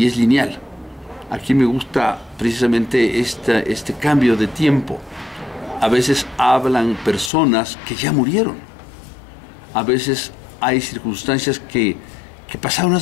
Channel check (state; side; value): drops out; right; at 7.3 s